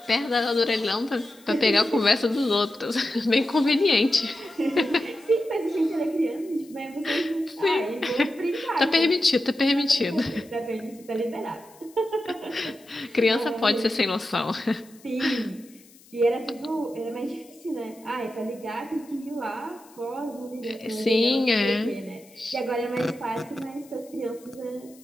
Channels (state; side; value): noise; left; hiss, 26 dB below the sound